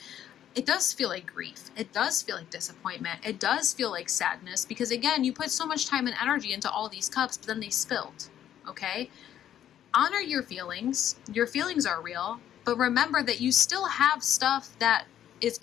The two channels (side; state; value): right; quieter; 10.8 dB